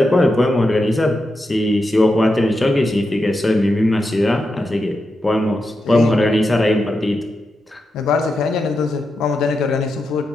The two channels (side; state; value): both; normal; correlation 0.87